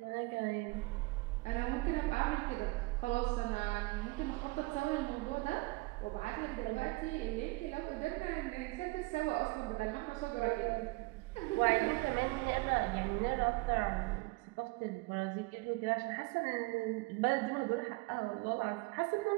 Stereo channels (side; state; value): left; quieter; 24.3 dB